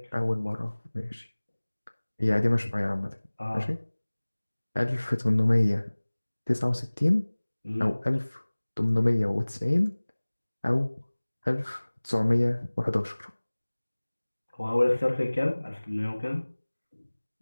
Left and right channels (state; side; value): inverted; both; correlation -1.00